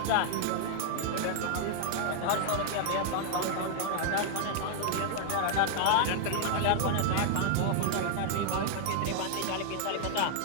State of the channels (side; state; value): both; different; correlation 0.00